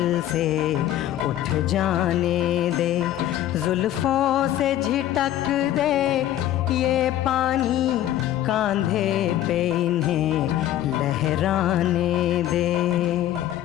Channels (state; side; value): quieter; right; 12.6 dB